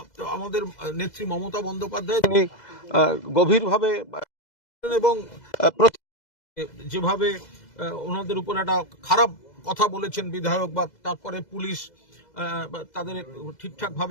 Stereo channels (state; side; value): late; right; 2.0 ms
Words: আমাদের নেত্রী মমতা বন্দ্যোপাধ্যায় তিনি গভীরভাবে এবং যেভাবে ওনাদের উপর একটা খারাপ কথা বলেছেন বিধায়ক, বা তারপরে পুলিশ তাদের ঠিকঠাক